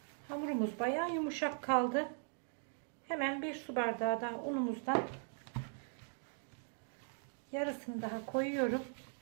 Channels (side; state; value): left; silent; 51 dB below the other